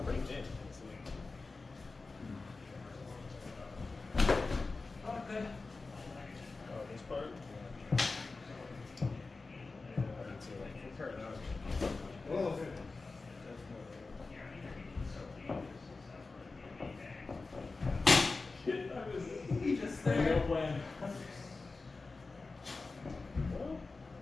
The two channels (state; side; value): quieter; right; 3.8 dB